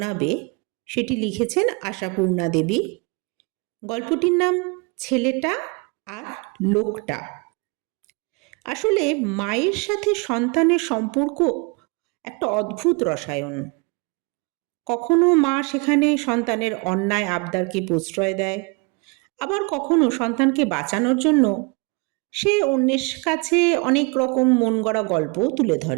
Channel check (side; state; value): left; quieter; 30.0 dB